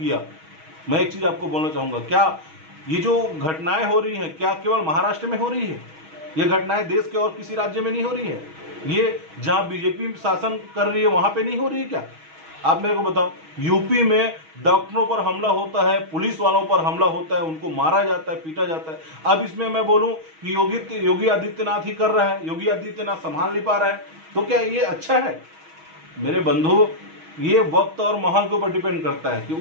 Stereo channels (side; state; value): left; late; 6.3 ms